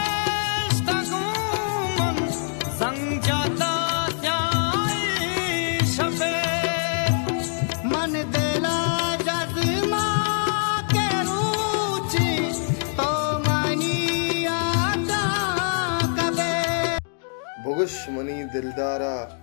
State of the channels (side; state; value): right; silent; digital silence